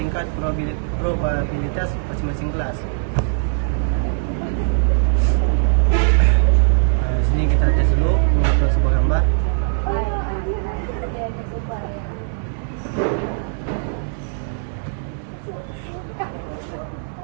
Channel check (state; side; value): silent; left; 61 dB below the other